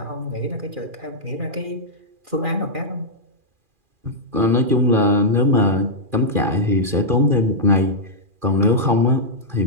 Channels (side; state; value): left; late; 2.4 ms